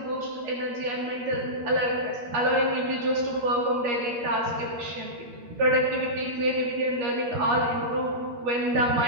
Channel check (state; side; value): late; left; 12 ms